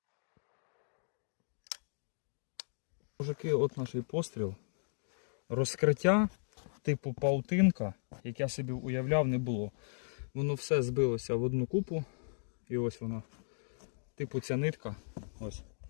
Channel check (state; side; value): silent; right; digital silence